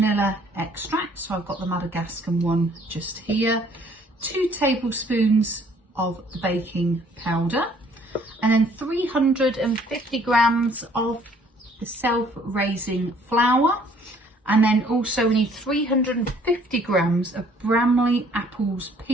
extract, so I've got the Madagascar one just here. 2 tablespoons of the baking powder, and then 350 grams of the self-raising flour. And then also we need 350 grams of Bramley apples,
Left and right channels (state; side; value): normal; both; correlation 0.59